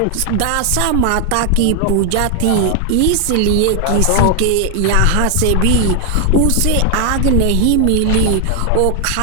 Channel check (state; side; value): different; both; correlation 0.00